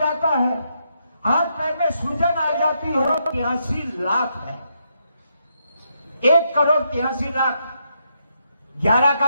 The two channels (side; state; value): both; inverted; correlation -0.80